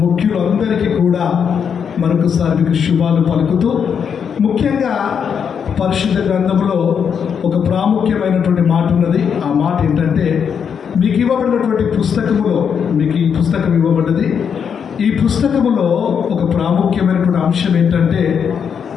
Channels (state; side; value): quieter; right; 7.2 dB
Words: ముఖ్యులందరికీ కూడా మరొకసారి మీకు శుభాలు పలుకుతూ, ముఖ్యంగా పరిశుద్ధ గ్రంథంలో ఒక ప్రాముఖ్యమైనటువంటి మాట ఉన్నది. ఆ మాట ఏంటంటే, మీకు ఇవ్వబడినటువంటి పుస్తకములో, మీకు ఈ పుస్తకం ఇవ్వబడ్డది. ఈ పుస్తకములో ఒక ప్రాముఖ్యమైనటువంటి అంశం ఏంటంటే,